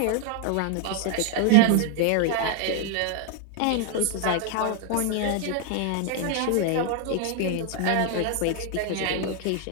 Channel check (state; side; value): different; both; correlation 0.00